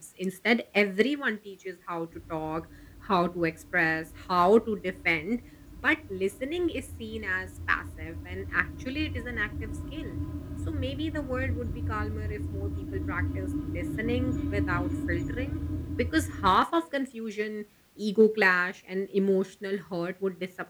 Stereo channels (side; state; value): both; identical; correlation 1.00